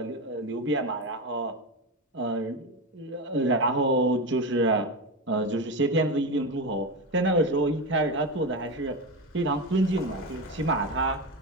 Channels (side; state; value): both; normal; correlation 0.17